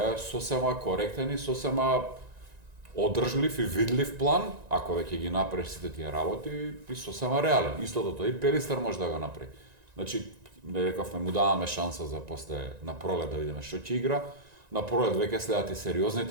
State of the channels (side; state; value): left; late; 1.9 ms